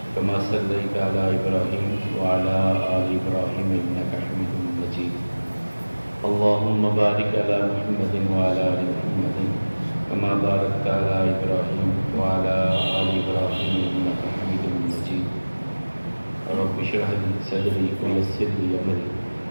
كما صليت على إبراهيم وعلى آل إبراهيم إنك حميد مجيد اللهم بارك على محمد وعلى آل محمد كما باركت على إبراهيم وعلى آل إبراهيم إنك حميد مجيد رب اشرح لي صدري ويسر لي أمري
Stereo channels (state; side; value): inverted; both; correlation -1.00